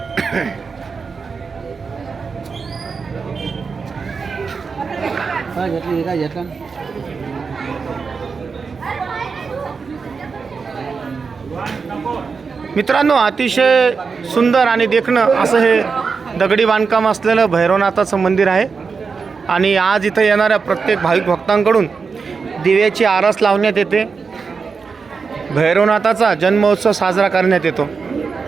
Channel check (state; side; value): quieter; left; 5.1 dB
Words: मित्रांनो, अतिशय सुंदर आणि देखणं असं हे दगडी बांधकाम असलेलं भैरवनाथाचं मंदिर आहे। आणि आज इथं येणाऱ्या प्रत्येक भाविक भक्तांकडून दिव्याची आरास लावण्यात येते। भैरवनाथाचा जन्मोत्सव साजरा करण्यात येतो।